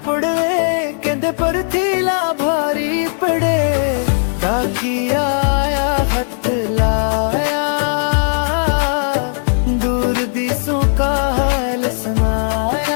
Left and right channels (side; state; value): right; silent; digital silence